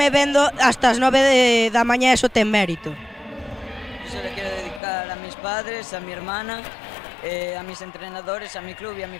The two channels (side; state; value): right; drops out; at 4.8 s